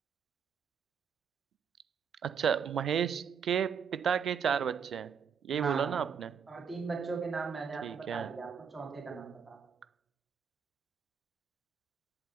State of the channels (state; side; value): quieter; left; 6.9 dB